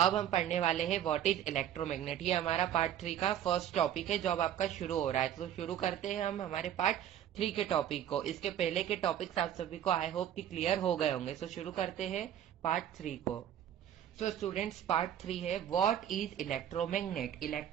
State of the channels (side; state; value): left; quieter; 10.6 dB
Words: हम पढ़ने वाले हैं व्हाट इज इलेक्ट्रोमैग्नेट। ये हमारा पार्ट 3 का फर्स्ट टॉपिक है जो अब आपका शुरू हो रहा है। तो शुरू करते हैं हम हमारे पार्ट 3 के टॉपिक को। इसके पहले के टॉपिक्स आप सभी को आई होप कि क्लियर हो गए होंगे। सो शुरू करते हैं पार्ट 3 को। सो स्टूडेंट्स, पार्ट 3 है व्हाट इज इलेक्ट्रोमैग्नेट।